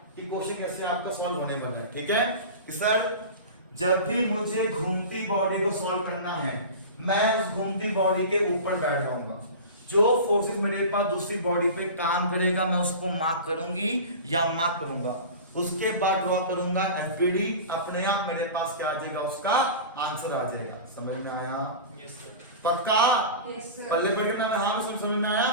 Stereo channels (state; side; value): inverted; both; correlation -0.32